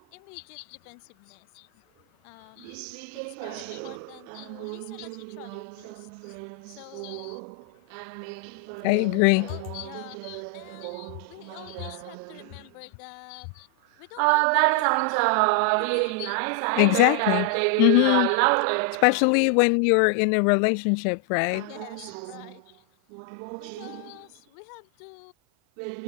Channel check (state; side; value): different; both; correlation 0.00